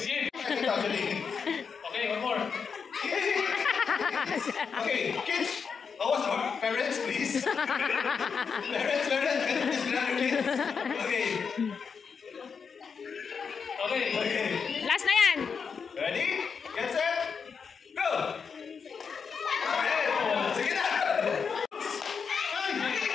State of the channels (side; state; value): right; quieter; 6.0 dB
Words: game. Okay, one more. Okay, kids. Parents, please. Parents, please grab your kids. Okay. Last na yan. Ready? Get set. Go. Alright. Sige na.